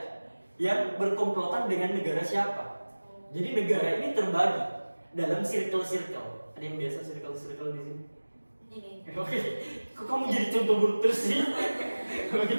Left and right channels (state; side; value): inverted; both; correlation -1.00